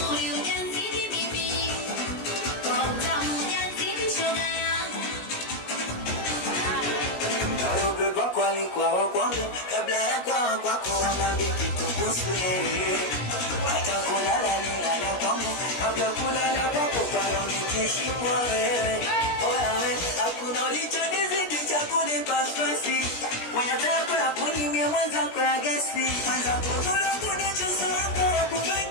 ujazidi bibi, kwa utamu ujazidi shoga yangu. Beba kwani kwa kwangu, kabla ya kwa kwako wamambi kitukusu yeye. Hata kulala nilala kwangu, kabla kulala kwako pala nikishimwa wewe. Oyawe, hakuna ulichonizidi cha kunipa stresi. Mwenye tako ya kunimia mwenzako ya gesi. Mwenzako tula kunichusu wako ya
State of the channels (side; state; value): right; late; 17 ms